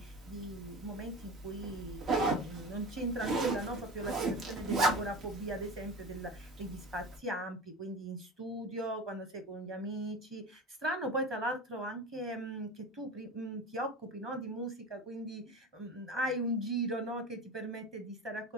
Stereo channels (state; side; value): normal; both; correlation 0.31